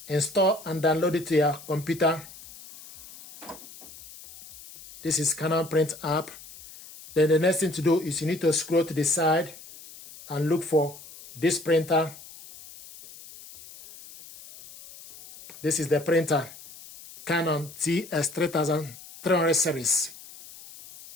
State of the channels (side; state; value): left; noise; hiss, 18 dB below the sound